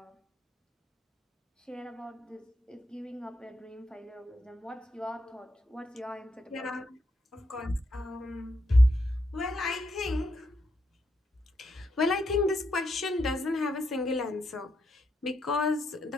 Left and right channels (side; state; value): both; normal; correlation 0.80